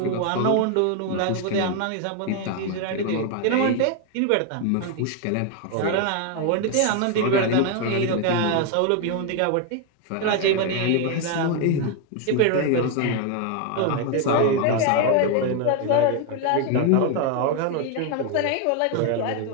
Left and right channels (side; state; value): both; different; correlation 0.01